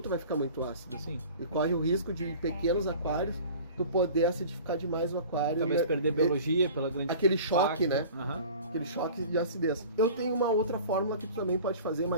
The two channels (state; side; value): inverted; both; correlation -0.42